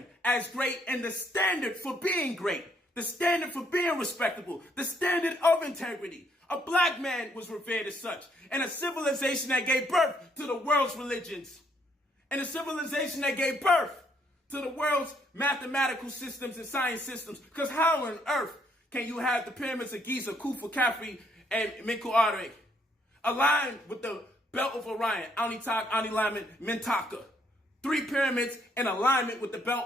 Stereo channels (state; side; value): normal; both; correlation 0.70